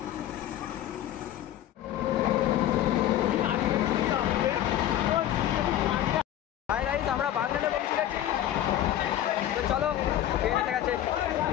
হাই গাইস, আমরা বাগনানে পৌঁছে গেছি, তো চলো, ট্রেন এসে গেছে।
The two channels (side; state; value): right; quieter; 12.2 dB